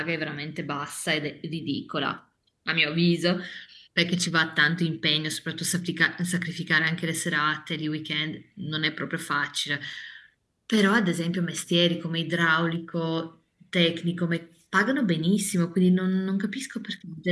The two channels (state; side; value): identical; both; correlation 1.00